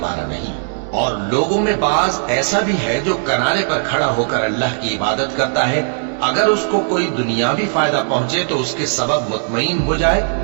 والا نہیں. اور لوگوں میں بعض ایسا بھی ہے جو کنارے پر کھڑا ہو کر اللہ کی عبادت کرتا ہے، اگر اس کو کوئی دنیاوی فائدہ پہنچے تو اس کے سبب مطمئن ہو جائے،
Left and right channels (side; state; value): left; silent; digital silence